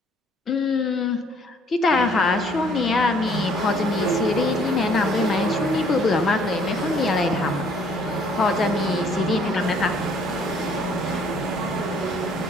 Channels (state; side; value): normal; both; correlation 0.61